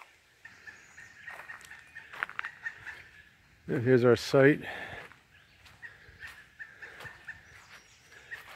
And here's our site.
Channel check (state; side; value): identical; both; correlation 1.00